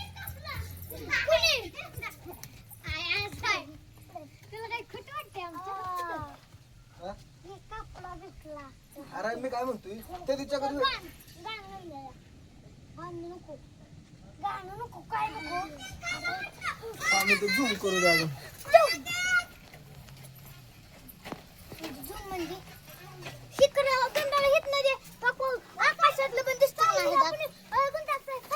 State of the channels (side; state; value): both; identical; correlation 1.00